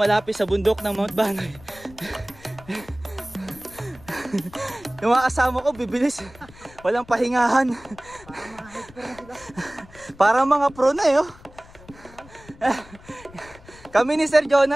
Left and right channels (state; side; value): noise; left; rumble, 22 dB below the sound